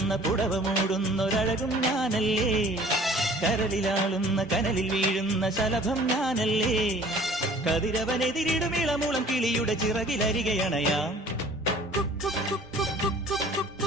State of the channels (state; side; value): normal; both; correlation 0.50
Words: പുടവ മൂടുന്നൊരഴകും ഞാനല്ലേ, കരലിലാളുന്ന കനലിൽ വീഴുന്ന ശലഭം ഞാനല്ലേ. കതിരവനെതിരിടും ഇളമൂളം കിളിയുടെ ചിറകിലരികയണയാം.